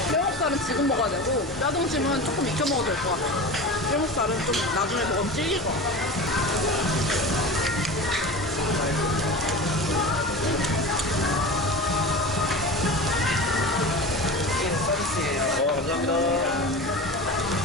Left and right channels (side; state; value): both; normal; correlation 0.31